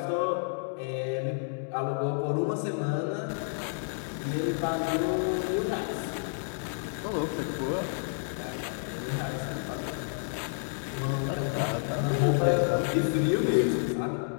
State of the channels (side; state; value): right; silent; digital silence